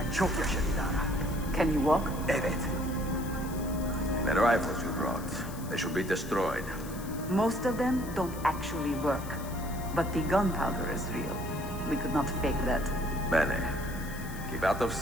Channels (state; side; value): noise; left; hiss, 16 dB below the sound